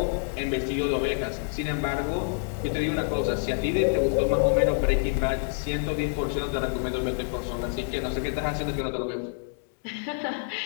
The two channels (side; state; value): right; silent; 60 dB below the other